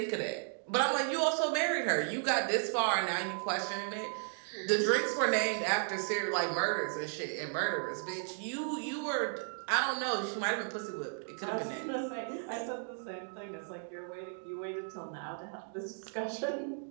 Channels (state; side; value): silent; left; digital silence